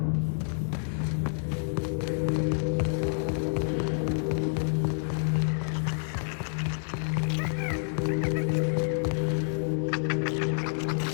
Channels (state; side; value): silent; right; digital silence